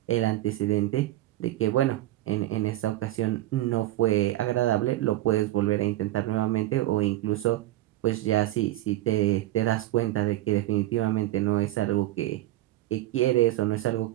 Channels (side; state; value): left; quieter; 15.5 dB